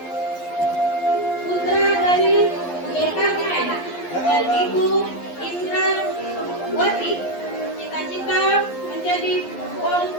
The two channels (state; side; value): late; right; 11 ms